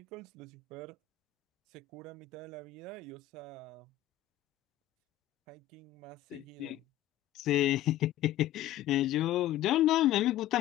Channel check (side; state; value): right; quieter; 12.9 dB